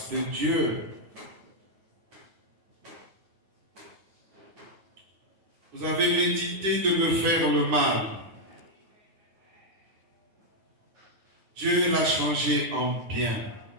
de Dieu? Vous avez médité de me faire le mal. Dieu l'a changé en bien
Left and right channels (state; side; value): late; left; 10 ms